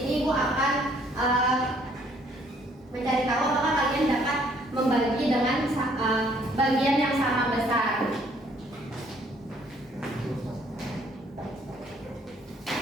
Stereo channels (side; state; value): both; normal; correlation 0.63